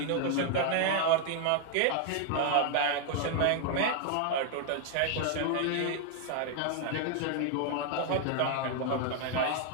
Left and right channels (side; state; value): both; different; correlation 0.00